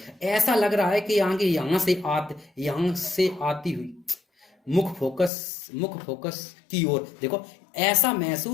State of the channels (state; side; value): drops out; right; at 5.3 s